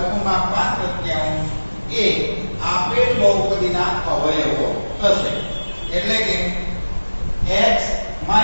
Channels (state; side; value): inverted; both; correlation -1.00